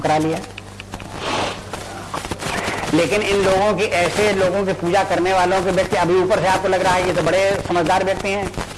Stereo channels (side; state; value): both; identical; correlation 1.00